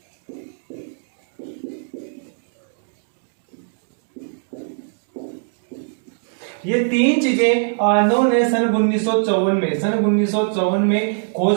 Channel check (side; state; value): left; silent; digital silence